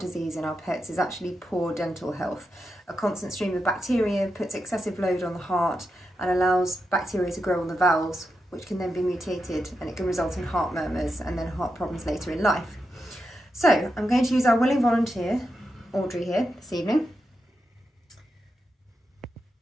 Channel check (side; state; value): both; normal; correlation 0.87